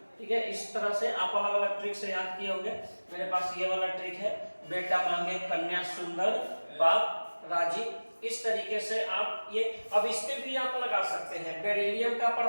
ठीक है, इस तरह से आप अलग अलग ट्रिक से याद किए होंगे। मेरे पास ये वाला ट्रिक है, बेटा मांगे कन्या सुंदर बाप राजी। इस तरीके से आप ये, अब इस पे भी आप लगा सकते हैं। बेरिलियम का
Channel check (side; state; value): both; inverted; correlation -1.00